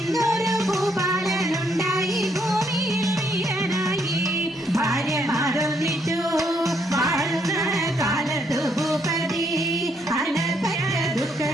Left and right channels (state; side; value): normal; both; correlation 0.73